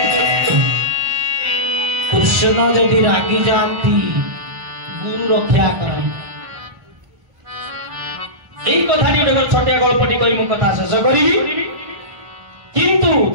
रागी जाती गुरु रक्षा करती এই কথাটি গোটে ছোটিয়া গল্পটি কই মু কথা শেষ করিবি কিন্তু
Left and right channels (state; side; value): late; left; 1.1 ms